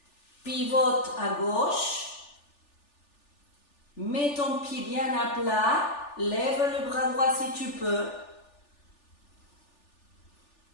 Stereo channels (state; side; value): late; right; 3.4 ms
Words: Pivote à gauche. Mets ton pied bien à plat. Lève le bras droit si tu peux.